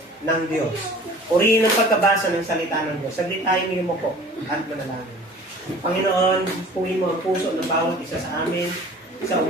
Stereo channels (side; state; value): both; normal; correlation 0.46